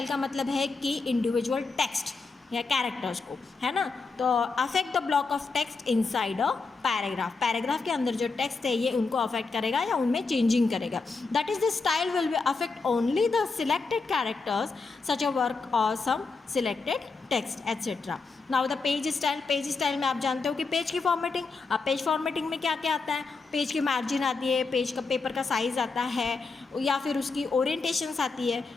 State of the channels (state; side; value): quieter; right; 4.2 dB